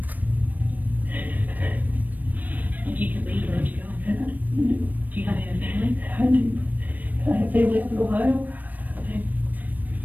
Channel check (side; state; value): left; late; 0.084 ms